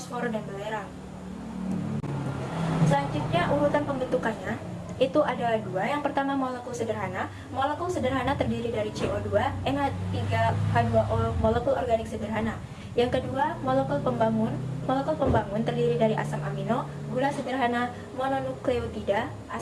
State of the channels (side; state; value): both; identical; correlation 1.00